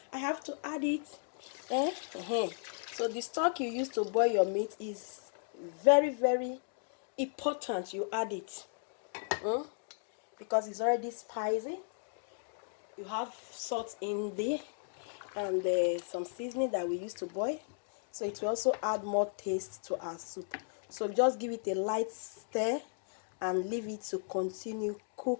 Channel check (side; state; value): right; silent; digital silence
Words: I have to add it. So the stock you use to boil your meat is very, very important. You add it because it's already spicy. You have salt in there and some seasoning that we use to boil, so it will also add more taste to our soup. So just give it a light stir and leave it to continue